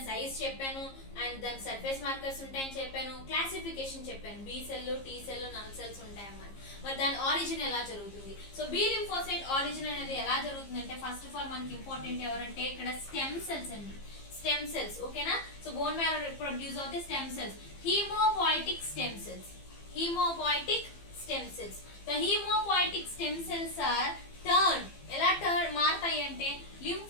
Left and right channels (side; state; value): right; late; 15 ms